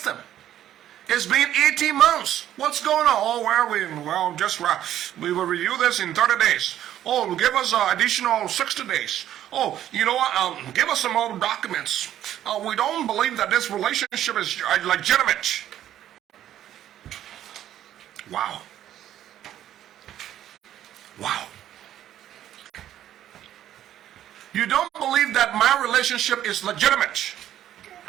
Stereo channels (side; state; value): left; quieter; 11.7 dB